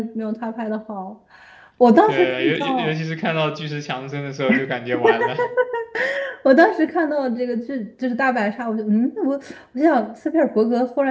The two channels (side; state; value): both; identical; correlation 1.00